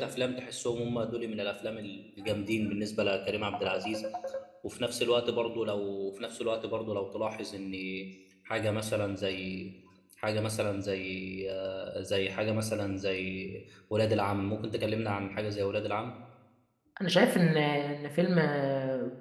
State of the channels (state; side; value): identical; both; correlation 1.00